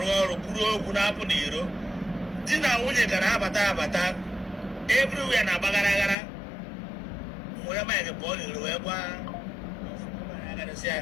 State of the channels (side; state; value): right; drops out; at 6.2 s